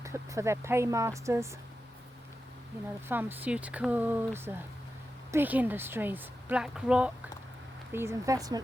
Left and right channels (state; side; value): normal; both; correlation 0.91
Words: their paymasters, you know, the pharmaceuticals, big industries, BlackRock, these